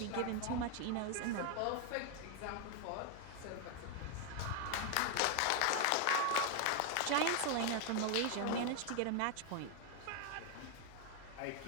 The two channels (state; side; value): different; both; correlation 0.00